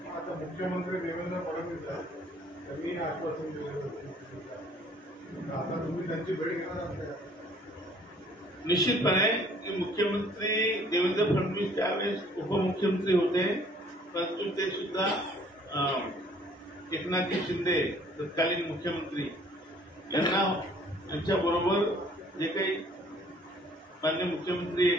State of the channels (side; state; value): both; normal; correlation 0.57